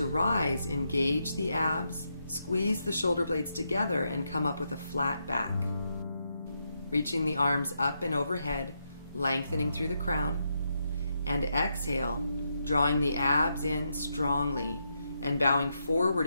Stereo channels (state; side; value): inverted; both; correlation -0.82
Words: rise, engage the abs, squeeze the shoulder blades together and come up with a flat back. Reaching the arms up and overhead, lengthening through the crown. And exhale, drawing the abs in strongly and bowing forward